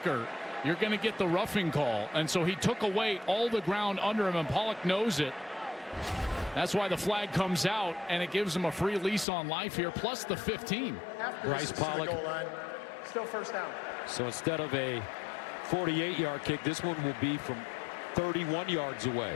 you're going to get the roughing call. And so he took away all the ground under him, and Pollock knows it. That's why the flag comes out, and it gives him a free lease on life here, plus the 15. Bryce Pollock. Still first down. So instead of a 48-yard kick, this one will be from 31 yards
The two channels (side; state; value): right; drops out; at 9.2 s